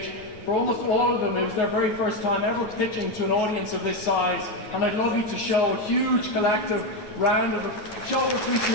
For almost all of them, it was their very first time ever pitching to an audience of this size, and I'd love you to show a huge collective round of show of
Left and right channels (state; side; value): late; right; 9.5 ms